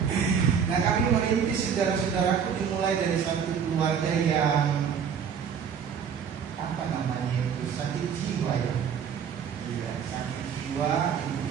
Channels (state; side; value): quieter; left; 7.3 dB